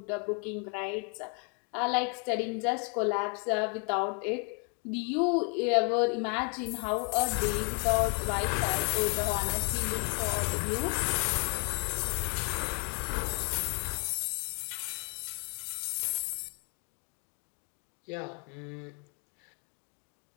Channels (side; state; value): right; quieter; 37.5 dB